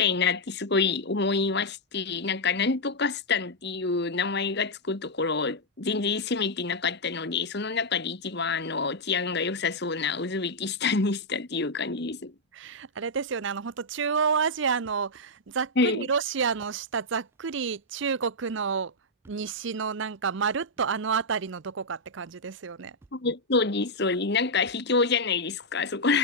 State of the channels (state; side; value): normal; both; correlation -0.03